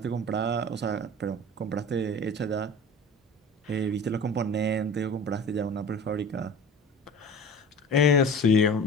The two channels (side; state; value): both; normal; correlation 0.37